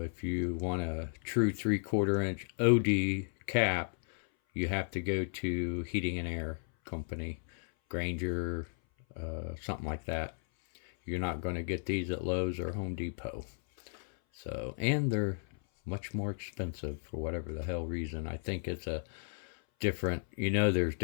you want a true 3/4-inch OD cap, you have to go to Heating and Air Company, Granger, something like that. You're not going to get these at Lowe's or Home Depot. So, and they're much more expensive for whatever the hell reason. I think it's a different, there's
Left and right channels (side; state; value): right; silent; 55 dB below the other